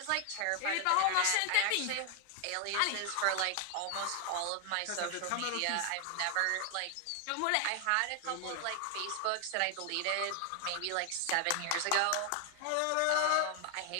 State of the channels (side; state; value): both; different; correlation 0.00